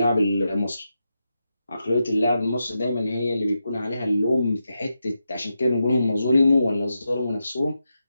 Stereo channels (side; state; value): both; inverted; correlation -0.87